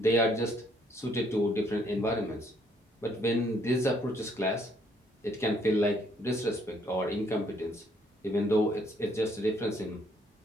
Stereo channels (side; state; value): both; normal; correlation 0.67